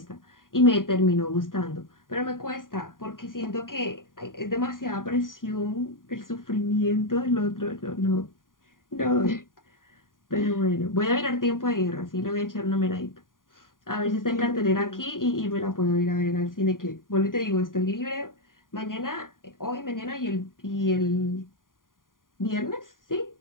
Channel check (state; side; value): late; right; 0.90 ms